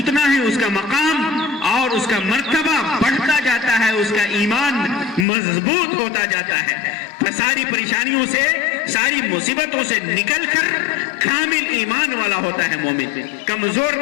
ہی اس کا مقام اور اس کا مرتبہ بڑھتا جاتا ہے، اس کا ایمان مضبوط ہوتا جاتا ہے. ساری پریشانیوں سے، ساری مصیبتوں سے نکل کر کامل ایمان والا ہوتا ہے مومن، کمزور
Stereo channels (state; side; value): drops out; right; at 5.2 s